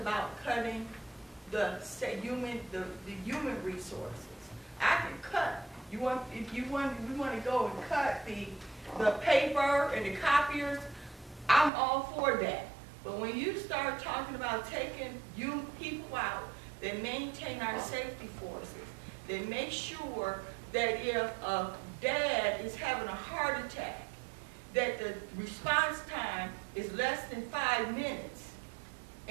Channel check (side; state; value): left; drops out; at 11.7 s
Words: cutting the human resources. I can cut. We want to go and cut the paper and the copiers. I'm all for that. But when you start talking about taking people out that maintain our safety forces, that make sure that if a dad is having a heart attack, that the response time is less than 5 minutes,